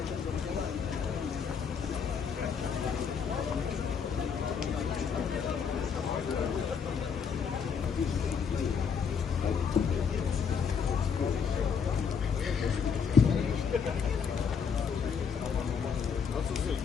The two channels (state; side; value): quieter; right; 6.4 dB